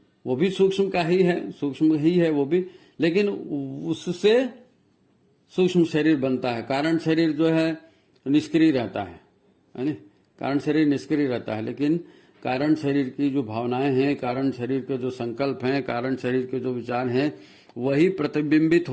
वो भी सूक्ष्म का ही है, सूक्ष्म ही है वो भी, लेकिन उससे सूक्ष्म शरीर बनता है। कारण शरीर जो है निष्क्रिय रहता है ना, कारण शरीर निष्क्रिय रहता है, लेकिन कारण शरीर की जो भावनाएं हैं, कारण शरीर के जो संकल्प हैं, कारण शरीर के जो विचार हैं, वही प्रतिबिंबित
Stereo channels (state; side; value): identical; both; correlation 1.00